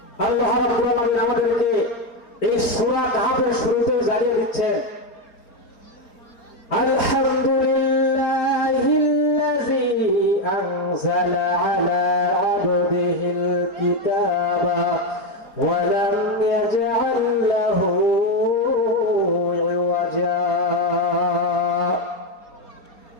আল্লাহ রাব্বুল আলামিন আমাদেরকে এই সূরা কাহফের শুরুতে জানিয়ে দিচ্ছেন, আলহামদুলিল্লাহিল্লাযী আনজালা আলা আবদিহিল কিতাবা ওয়া লাম ইয়াজআল লাহু ইওয়াজা।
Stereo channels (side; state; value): right; late; 4.3 ms